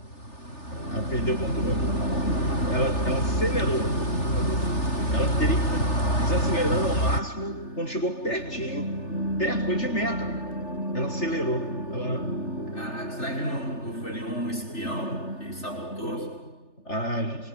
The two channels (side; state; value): right; late; 3.4 ms